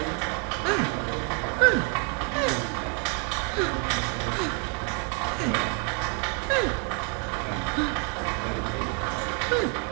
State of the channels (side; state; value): left; quieter; 35.8 dB